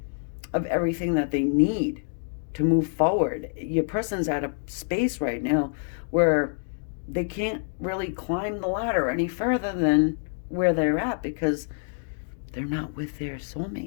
everything that they need to move forward. Your person's at a space right now where they can't really climb the ladder any further than where they're at because they're not with their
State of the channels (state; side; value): silent; right; digital silence